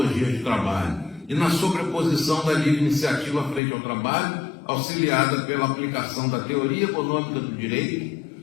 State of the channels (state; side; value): drops out; right; at 3.6 s